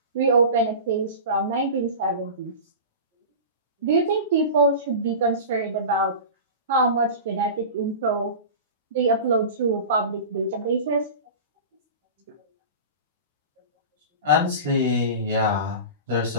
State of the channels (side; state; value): both; inverted; correlation -0.32